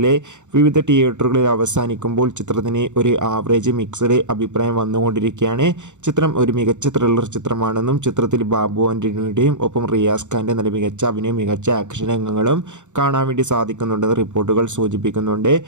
വിവിധ തിയേറ്ററുകളിൽ അവസാനിക്കുമ്പോൾ ചിത്രത്തിന് ഒരു ആവറേജ് മിക്സഡ് അഭിപ്രായം വന്നുകൊണ്ടിരിക്കുകയാണ്. ചിത്രം ഒരു മികച്ച ത്രില്ലർ ചിത്രമാണെന്നും ചിത്രത്തിൽ ബാബു ആൻ്റണിയുടെയും ഒപ്പം റിയാസ് ഖാൻ്റെ നല്ല മികച്ച അഭിനയം, മികച്ച ആക്ഷൻ രംഗങ്ങളും കാണാൻ വേണ്ടി സാധിക്കുന്നുണ്ടെന്ന് റിപ്പോർട്ടുകൾ സൂചിപ്പിക്കുന്നുണ്ട്.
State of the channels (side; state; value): left; late; 0.85 ms